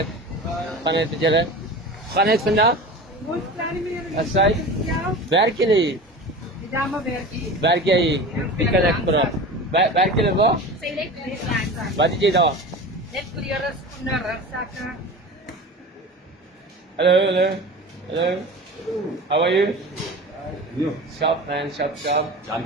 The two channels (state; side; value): normal; both; correlation 0.33